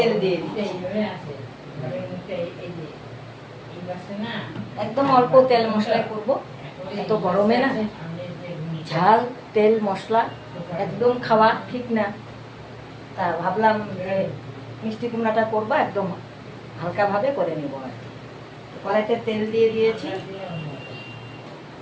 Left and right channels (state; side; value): identical; both; correlation 1.00